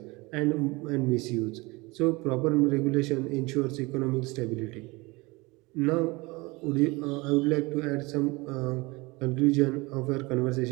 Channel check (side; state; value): left; quieter; 24.2 dB